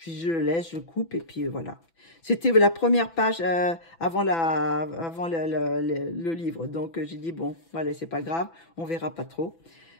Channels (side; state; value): right; late; 6.0 ms